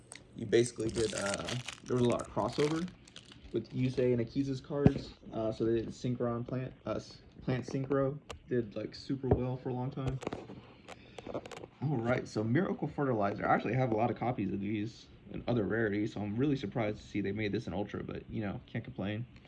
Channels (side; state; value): both; identical; correlation 1.00